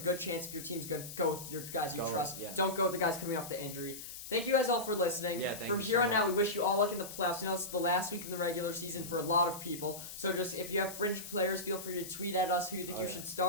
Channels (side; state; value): left; noise; hiss, 11 dB below the sound